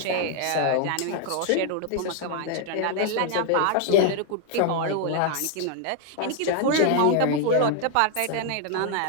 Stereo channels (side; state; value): both; different; correlation 0.00